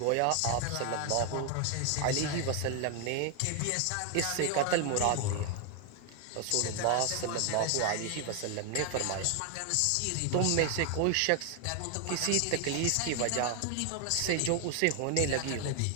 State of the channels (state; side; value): different; both; correlation 0.00